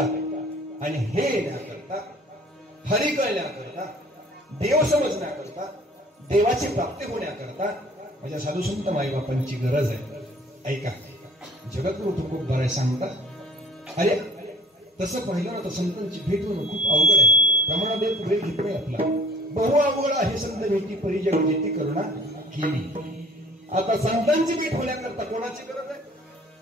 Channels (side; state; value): both; normal; correlation 0.52